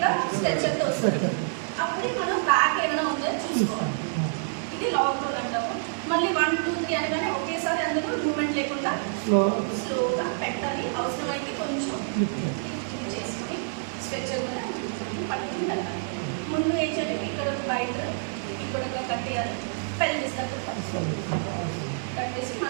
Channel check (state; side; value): silent; left; 60 dB below the other